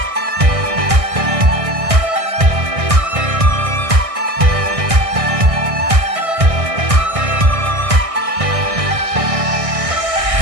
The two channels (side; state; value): left; late; 1.6 ms